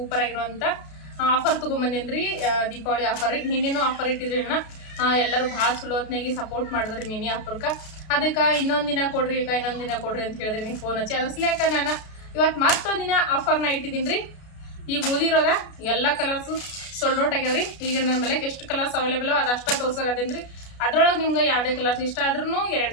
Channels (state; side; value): late; right; 33 ms